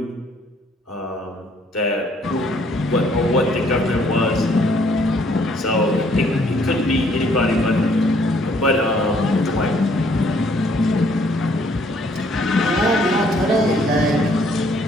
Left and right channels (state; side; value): normal; both; correlation 0.64